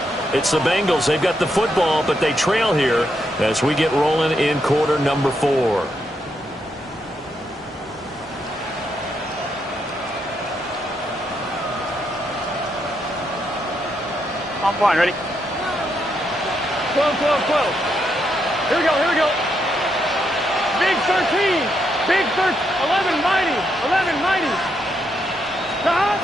It's the Bengals. They've got the football, but they trail here as we get rolling in quarter number 4. I'm fine. Ready? 12, 12, 12. Here we go. Here we go. Big 13. Big 13. 11 mighty. 11 mighty.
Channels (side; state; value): both; normal; correlation 0.79